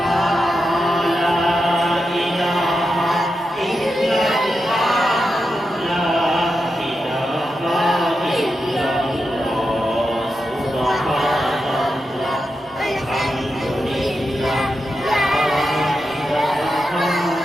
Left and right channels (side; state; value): both; normal; correlation 0.88